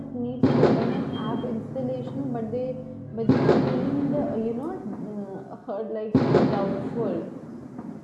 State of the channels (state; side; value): identical; both; correlation 1.00